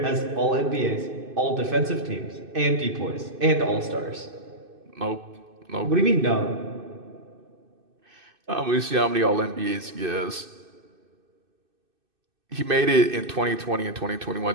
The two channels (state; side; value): late; left; 2.6 ms